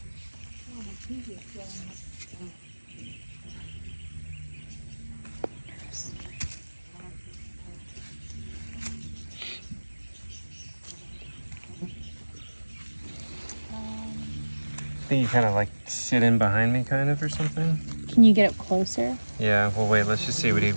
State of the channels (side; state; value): both; inverted; correlation -1.00